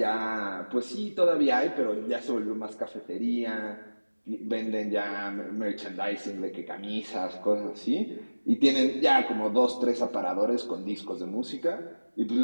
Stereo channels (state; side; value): inverted; both; correlation -1.00